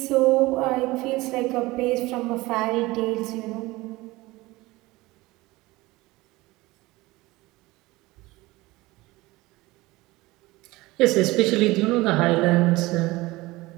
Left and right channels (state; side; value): quieter; left; 20.5 dB